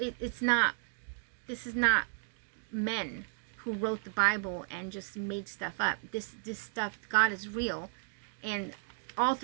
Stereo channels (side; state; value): left; silent; 55 dB below the other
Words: this is not men who wrote the Bible and just made stuff up. This stuff, God is real, and all